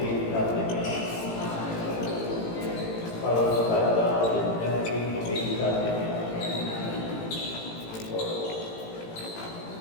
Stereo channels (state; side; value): late; right; 18 ms